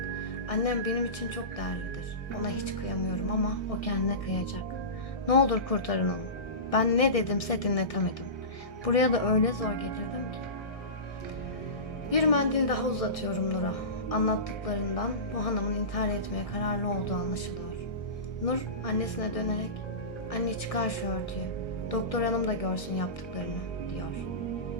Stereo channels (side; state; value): right; late; 1.6 ms